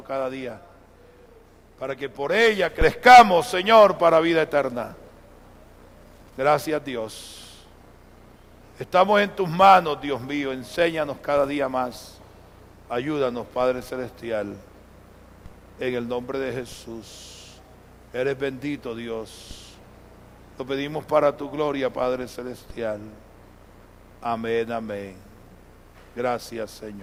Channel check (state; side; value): identical; both; correlation 1.00